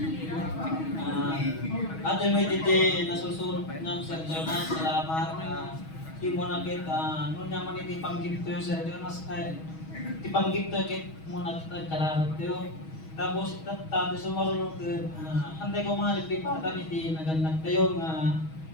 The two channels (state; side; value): late; right; 6.3 ms